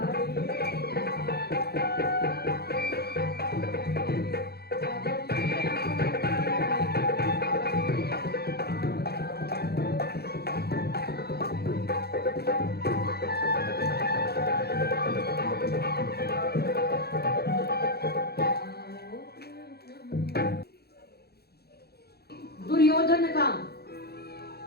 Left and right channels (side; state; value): right; late; 0.46 ms